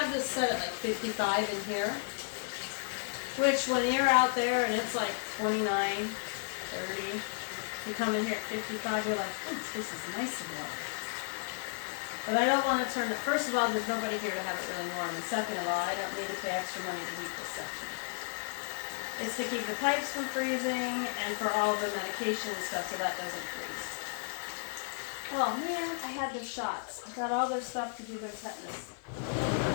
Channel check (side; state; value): right; silent; digital silence